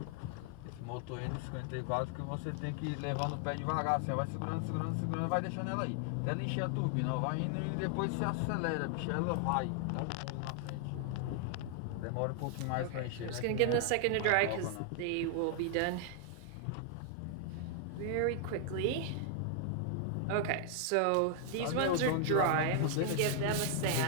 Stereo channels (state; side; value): different; both; correlation 0.00